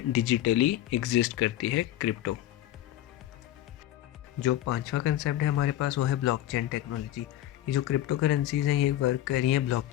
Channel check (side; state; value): right; quieter; 13.3 dB